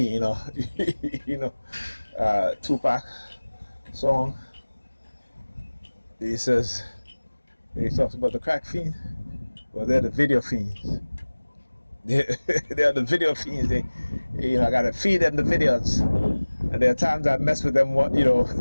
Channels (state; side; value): inverted; both; correlation -1.00